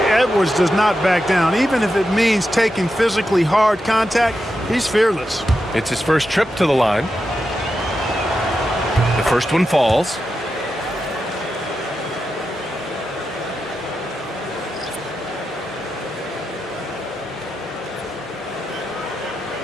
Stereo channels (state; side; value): normal; both; correlation 0.88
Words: Edwards does not back down. Even if it means taking physically hard contact, he's fearless. It's his first trip to the line. The first one falls.